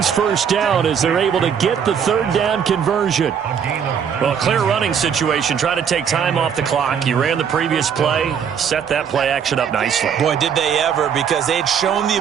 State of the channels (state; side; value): quieter; left; 7.6 dB